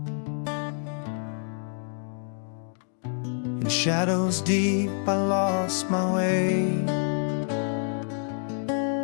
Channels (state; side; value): silent; right; 60 dB below the other